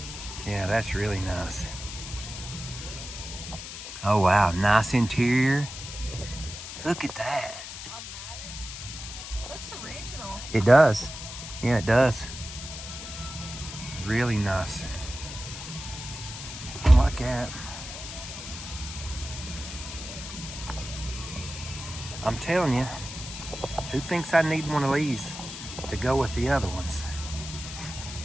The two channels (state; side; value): noise; left; hiss, 10 dB below the sound